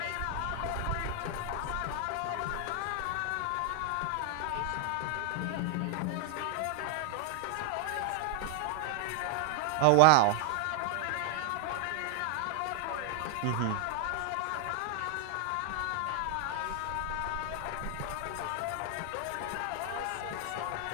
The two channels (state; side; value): different; both; correlation 0.00